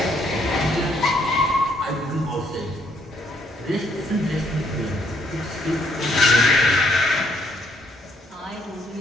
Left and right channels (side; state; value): both; normal; correlation 0.69